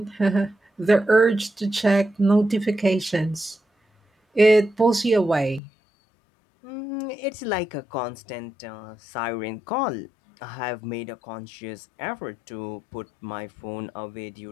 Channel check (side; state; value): right; drops out; at 5.6 s